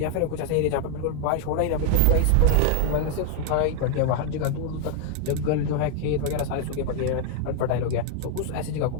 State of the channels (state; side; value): different; both; correlation 0.00